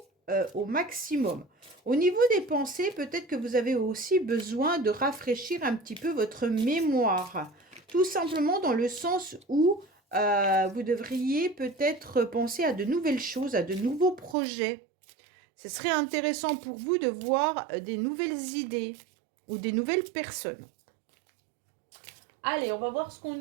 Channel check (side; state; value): left; drops out; at 14.4 s